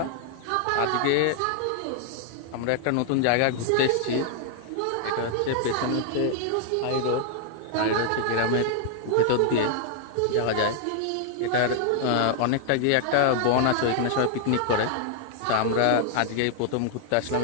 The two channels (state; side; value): different; both; correlation 0.00